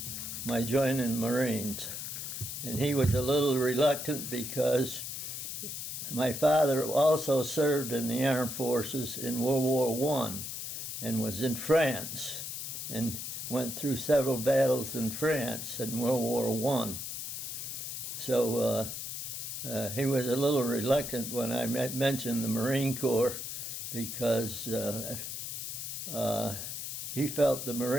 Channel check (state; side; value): noise; left; hiss, 6 dB below the sound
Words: joining Marines, and he was a little reluctant because my father also served in the armed forces in World War I and was in France and went through several battles in France in World War I. So he was a little reluctant when I mentioned the Marine Corps because he felt the